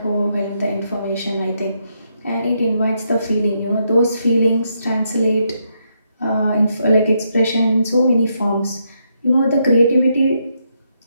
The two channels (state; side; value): inverted; both; correlation -0.79